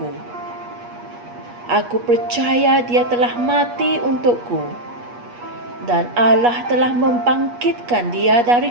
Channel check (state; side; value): late; left; 8.3 ms